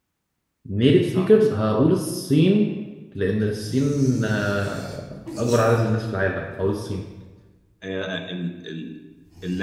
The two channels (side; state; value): both; identical; correlation 1.00